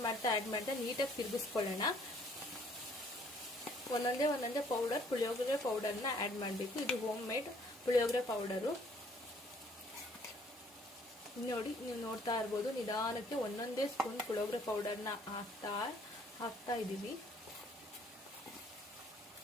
ಮಾಡ್ತಾ ನೀಟಾಗಿ ತಿರುಗಿಸ್ಕೊಳ್ಳೋಣ. ಒಂದೊಂದೇ ಪುಳಿಯೋಗರೆ ಪೌಡರ್ನ ಆ್ಯಡ್ ಮಾಡಬೇಕು. ಇದು ಹೋಮ್ ಮೇಡ್ ಪುಳಿಯೋಗರೆ ಪೌಡರು ನೋಡಿ. ನೀವು ನೋಡ್ತಾ ಇರ್ಬೋದು, ನಿಧಾನಕ್ಕೆ ಒಂದೊಂದೇ ಸ್ಪೂನ್ ಪುಳಿಯೋಗರೆ ಪೌಡರ್ನ ಹಾಕ್ತಾ ಇದ್ದೀವಿ.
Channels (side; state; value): both; normal; correlation 0.61